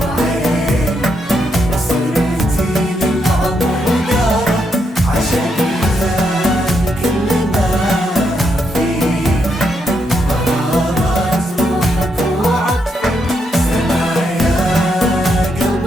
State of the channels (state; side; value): normal; both; correlation 0.79